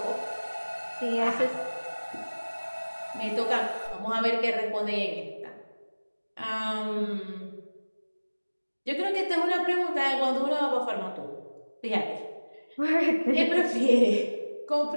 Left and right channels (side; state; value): both; inverted; correlation -1.00